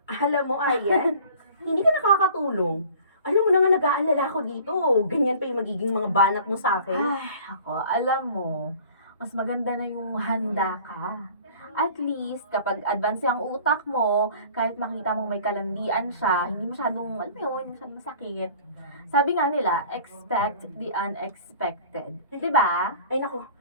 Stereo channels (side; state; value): both; inverted; correlation -0.47